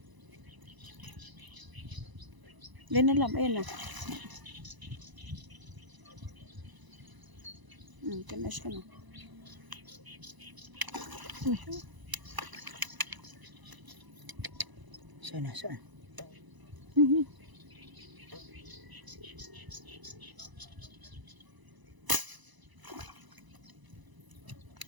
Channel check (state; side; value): late; left; 1.0 ms